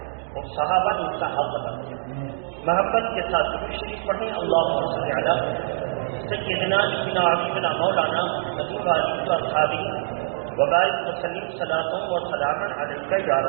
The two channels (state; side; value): silent; left; digital silence